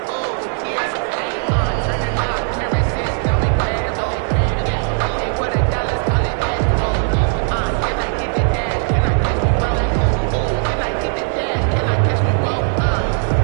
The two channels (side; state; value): left; silent; 57 dB below the other